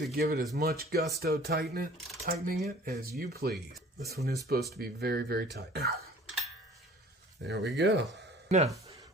give it as much gusto tightening it as you please. This one is supposed to be very, very tight. There we go. Now,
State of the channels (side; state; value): both; normal; correlation 0.49